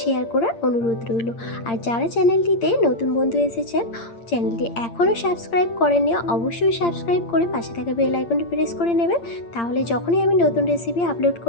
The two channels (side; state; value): right; late; 8.7 ms